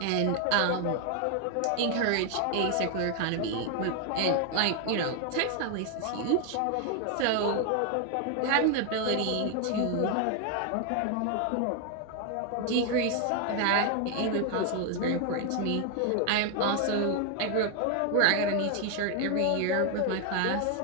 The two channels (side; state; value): both; different; correlation 0.00